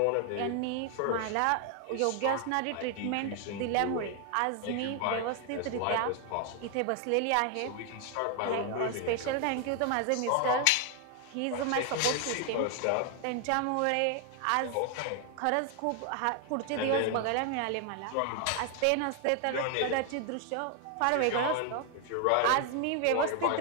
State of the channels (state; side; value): different; both; correlation 0.00